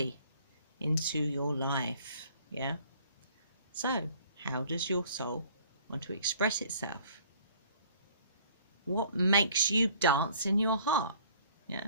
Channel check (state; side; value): inverted; both; correlation -0.55